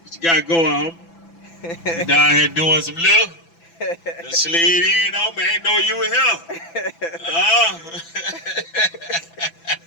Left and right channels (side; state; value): right; late; 6.0 ms